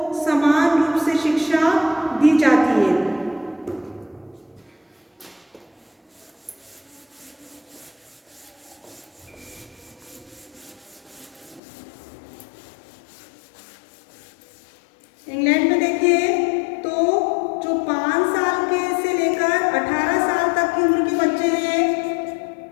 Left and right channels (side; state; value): right; drops out; at 11.6 s